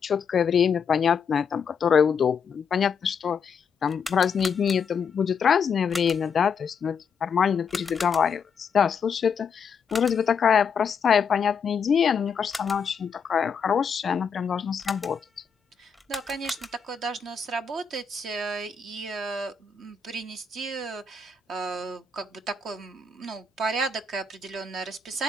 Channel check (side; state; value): right; quieter; 5.9 dB